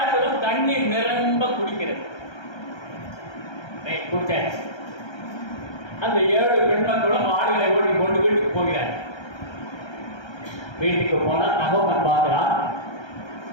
தண்ணீர் நிரம்ப குடிக்கிறது. குடிச்சாச்சு. அந்த 7 பெண் மக்களும் ஆடுகளை ஓட்டி கொண்டு வீட்டுக்கு போகிறார். வீட்டுக்கு போனா தகவல் பார்க்கிறான்.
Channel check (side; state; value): right; late; 1.3 ms